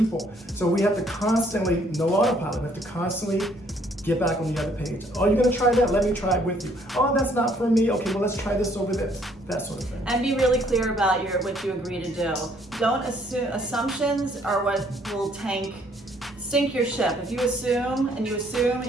So we have to constantly, no autopilot, we have to constantly get back on the other page. Oh, you're going to try that? Let me try it with you. Oh, that's not for me. Okay, well, let's try this over this. That sort of thing. And be really clear about what you agree to do. Don't assume. Assumptions are what will sink your ship. If you assume and you assume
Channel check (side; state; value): both; normal; correlation 0.65